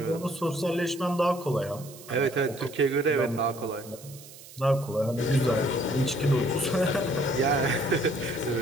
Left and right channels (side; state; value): right; noise; hiss, 18 dB below the sound